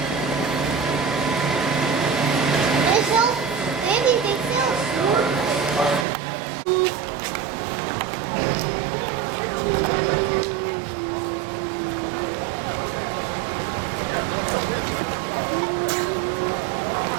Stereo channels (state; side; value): drops out; left; at 6.1 s